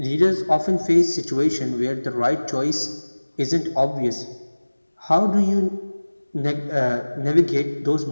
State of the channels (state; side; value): inverted; both; correlation -1.00